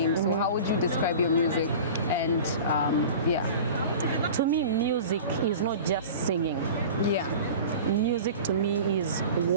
So how would you describe your music? And to me, music is not just singing. Music to me is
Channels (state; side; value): inverted; both; correlation -0.37